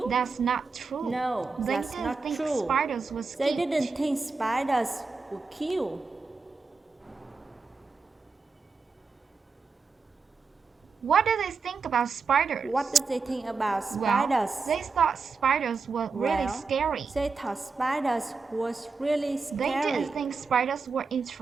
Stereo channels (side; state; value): left; quieter; 4.6 dB